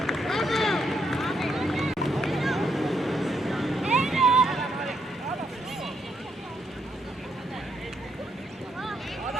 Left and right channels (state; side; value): normal; both; correlation 0.77